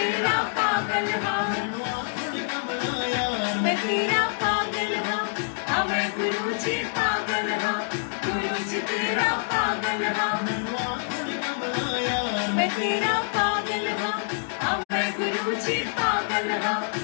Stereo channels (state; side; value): silent; right; digital silence